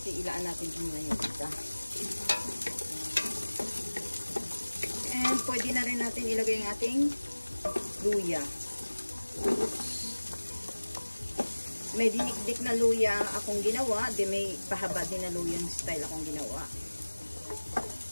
ilaan natin ito muna yung isa. And pwede na rin natin ilagay ang ating luya. May dinikdik na luya akong ginawa, di may pahaba din na luya yung style akong ginawa.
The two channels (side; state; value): both; inverted; correlation -1.00